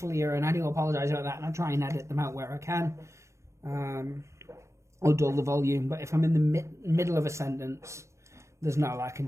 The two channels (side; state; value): left; late; 0.14 ms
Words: and I do apologise about that. And I try and edit them out where I can, or dull the volume. But if I'm in the middle of a sentence, there's not a lot I can